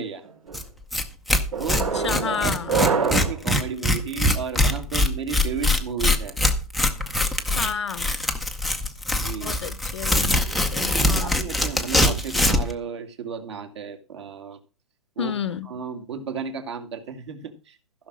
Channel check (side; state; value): both; normal; correlation 0.52